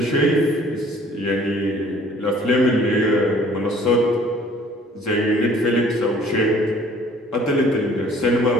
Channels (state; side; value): normal; both; correlation 0.55